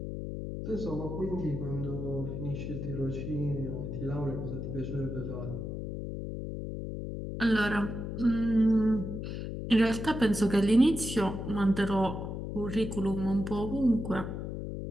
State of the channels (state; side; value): noise; left; hum, 5 dB below the sound